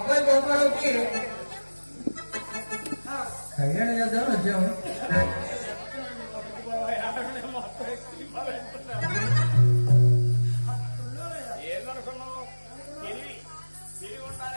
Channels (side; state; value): both; inverted; correlation -1.00